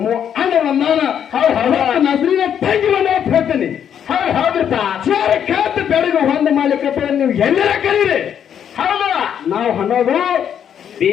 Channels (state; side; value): quieter; right; 8.8 dB